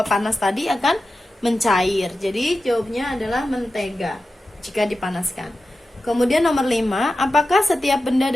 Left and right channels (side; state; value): both; normal; correlation 0.93